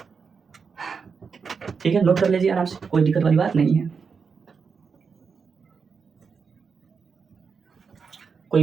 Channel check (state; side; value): quieter; left; 5.6 dB